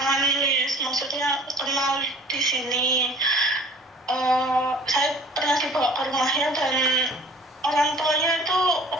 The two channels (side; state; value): both; normal; correlation 0.49